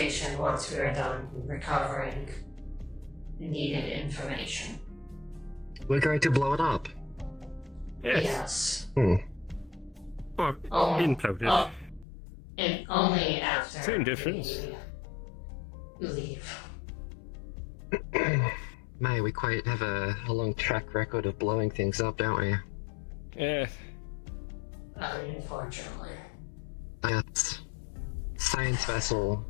once we are done recovering needed information. We're going to blow it up? Yes. Or imploded. And only after Same difference. we leave. May, we quite have a long track record of blowing things up, don't we? Yes. Unfortunately. That science vessel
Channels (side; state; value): right; drops out; at 12.1 s